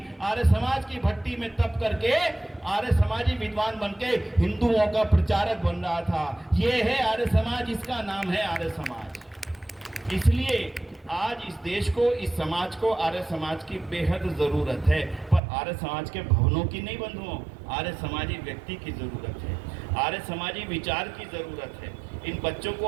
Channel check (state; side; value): drops out; left; at 15.4 s